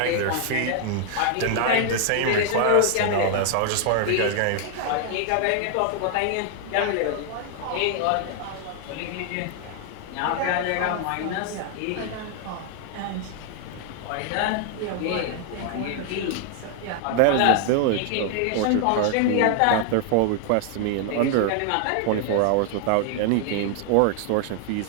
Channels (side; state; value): both; different; correlation 0.00